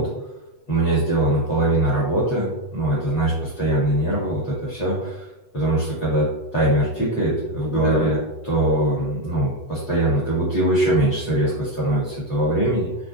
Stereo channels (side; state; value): right; late; 8.1 ms